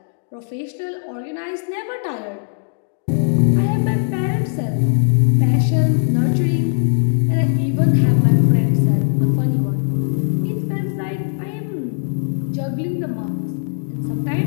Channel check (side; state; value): right; silent; digital silence